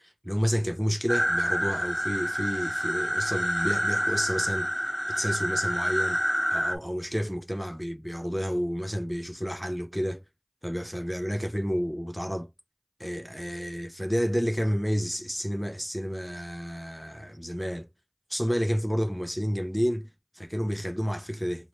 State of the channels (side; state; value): both; identical; correlation 1.00